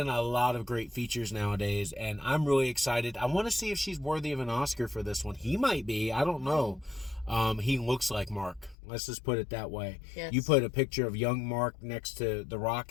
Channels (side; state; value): right; drops out; at 8.8 s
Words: a lot of great features nowadays, and I'm really excited. I want to see if she's worthy of an Oscar for this one. He might be. I don't know. He looks like Mark. Let's just put it that way. Yes. You put a picture of young Mark next to The